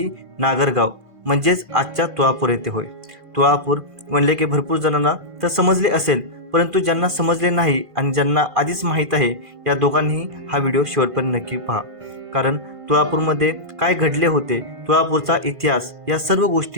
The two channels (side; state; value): left; late; 1.5 ms